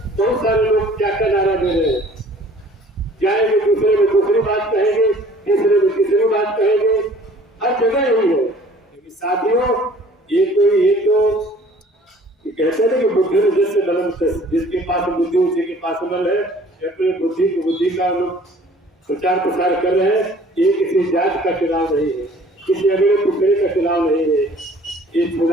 बहुत सारे लोग क्या क्या नारा दे रहे हैं, जाएंगे दूसरे में दूसरी बात कहेंगे, तीसरे में तीसरी बात कहेंगे, हर जगह यही है। लेकिन साथियों, ये तो कहते हैं कि बुद्धि में जिससे बलम, जिसके पास बुद्धि उसी के पास बल है। अपने बुद्धि का लोग प्रचार प्रसार कर रहे हैं। ये किसी जात का चुनाव नहीं है, किसी अगले दूसरे का चुनाव नहीं है। ये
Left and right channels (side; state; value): both; normal; correlation 0.52